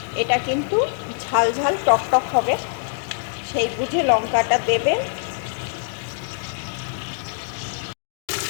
এটা কিন্তু ঝাল ঝাল টক টক হবে, সেই বুঝে লঙ্কাটা দেবেন।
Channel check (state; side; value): silent; right; digital silence